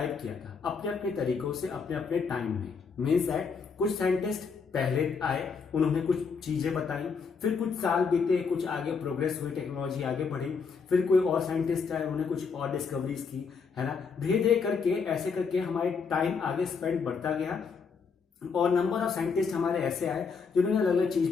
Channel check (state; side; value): quieter; right; 5.4 dB